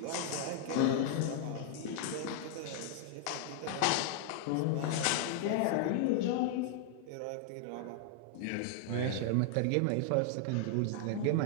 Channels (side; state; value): both; different; correlation 0.00